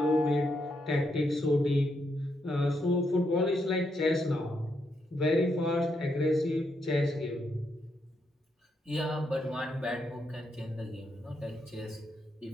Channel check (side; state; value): both; normal; correlation 0.79